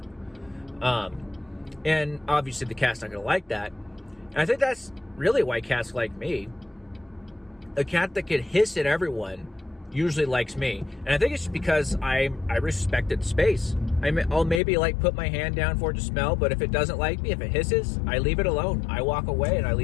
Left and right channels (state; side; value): drops out; right; at 14.6 s